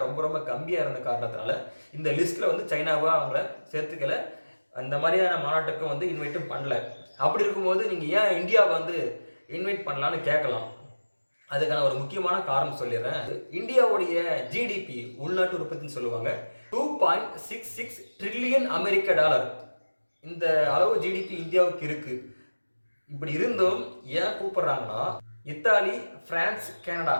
ரொம்ப ரொம்ப கம்மியாக இருந்த காரணத்தினால இந்த லிஸ்ட்டில் சைனாவை அவங்கள சேர்த்துக்கல. அந்த மாதிரியான மாநாட்டுக்கும் இன்வைட்டும் பண்ணல. அப்படி இருக்கும்போது நீங்கள் ஏன் இந்தியாவை இன்வைட் பண்ணலான்னு கேட்கலாம். அதுக்கான ஒரு முக்கியமான காரணம் சொல்லிடுறேன். இந்தியாவுடைய ஜிடிபி, உள்நாட்டு உற்பத்தின்னு சொல்லுவாங்க, 2.66 ட்ரில்லியன் அமெரிக்க டாலர். இந்த அளவு ஜிடிபி இந்தியாவுக்கு இருக்கு. இப்படி இருந்தும் ஏன் கூப்பிடுறாங்கன்னா, இத்தாலி, பிரான்ஸ், கனடா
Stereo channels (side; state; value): both; inverted; correlation -1.00